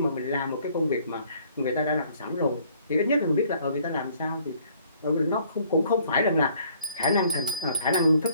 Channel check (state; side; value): inverted; both; correlation -0.61